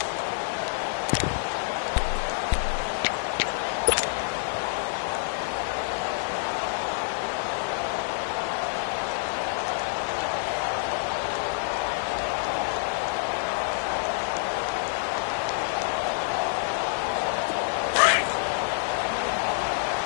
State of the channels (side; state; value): right; silent; digital silence